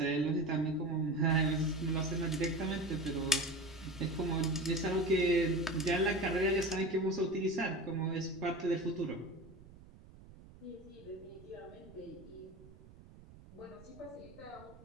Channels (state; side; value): noise; right; rumble, 20 dB below the sound